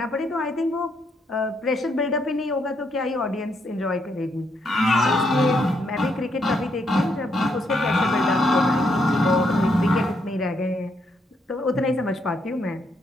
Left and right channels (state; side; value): normal; both; correlation 0.75